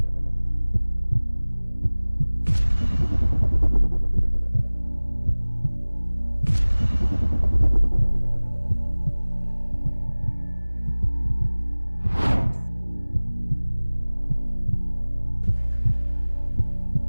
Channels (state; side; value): inverted; both; correlation -1.00